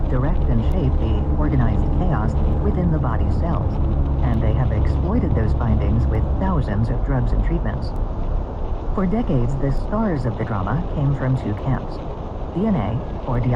direct and shape the organized chaos within the body's cells, and they have exploited those findings with thousands of drugs and treatments. For decades, the stars of the drama came from two camps: DNA, or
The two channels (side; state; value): both; identical; correlation 1.00